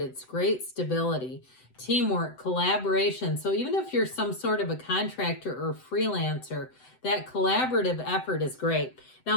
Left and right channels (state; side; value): late; right; 7.9 ms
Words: It's great stability. teamwork, collaboration. So even if you're some sort of a contractor or freelancer, that collaborative effort is great. Now,